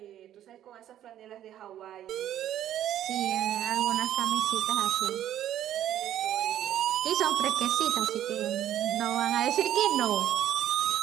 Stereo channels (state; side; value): quieter; left; 11.7 dB